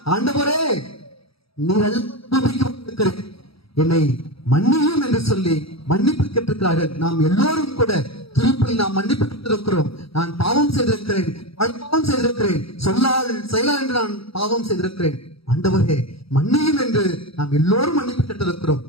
ஆண்டவரே, நீர் என்னை மன்னியும் என்று சொல்லி மன்னிப்பு கேட்டிருக்கிறார்கள். நாம் எல்லோரும் கூட திருப்பி நாம் மன்னிப்பு கேட்டிருக்கிறோம். நான் பாவம் செய்திருக்கிறேன், பாவம் செய்திருக்கிறேன், சொல்லால் செயலால் என்று நான் பாவம் செய்திருக்கிறேன். ஆண்டவரே மன்னியும் என்று நாம் எல்லோரும் மன்னிப்பு கேட்டிருக்கிறோம்.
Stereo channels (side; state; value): right; late; 0.76 ms